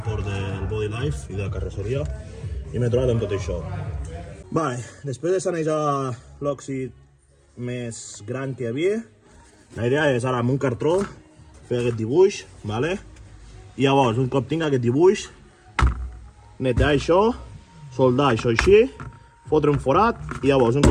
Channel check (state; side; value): identical; both; correlation 1.00